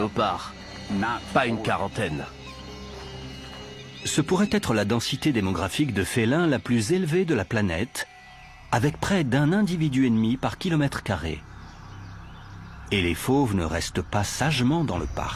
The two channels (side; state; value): both; identical; correlation 1.00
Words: pas une quarantaine. Ce pourrait être la densité démographique de félins la plus élevée de la planète, avec près d'un individu et demi par kilomètre carré. Et les fauves ne restent pas sagement dans le